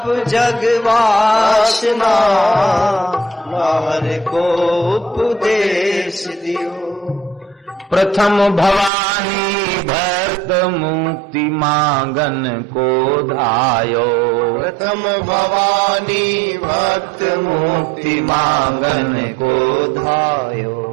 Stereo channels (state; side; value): drops out; left; at 8.9 s